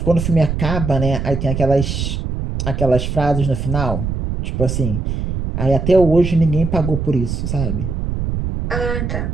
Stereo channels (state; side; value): noise; right; rumble, 3 dB below the sound